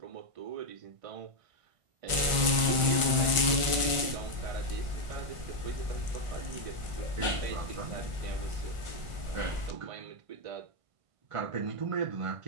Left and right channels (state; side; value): late; left; 1.4 ms